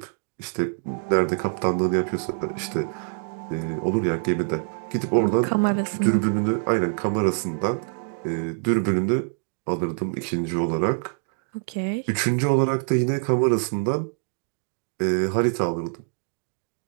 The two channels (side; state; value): left; silent; digital silence